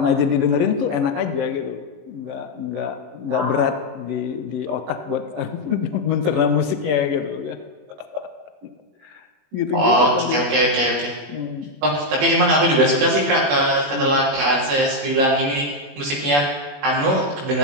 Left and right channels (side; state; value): left; late; 21 ms